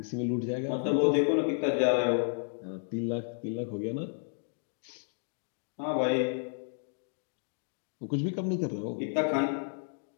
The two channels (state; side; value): silent; right; 56 dB below the other